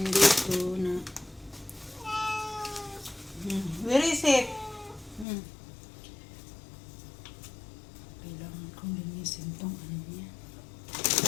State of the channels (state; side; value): drops out; right; at 5.2 s